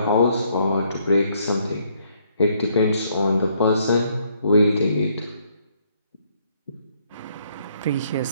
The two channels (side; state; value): both; inverted; correlation -0.69